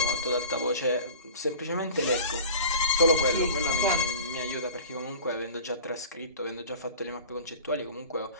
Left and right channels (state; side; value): inverted; both; correlation -0.40